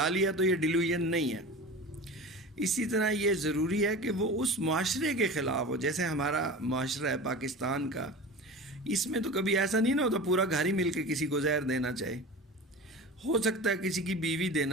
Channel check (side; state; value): both; normal; correlation 0.33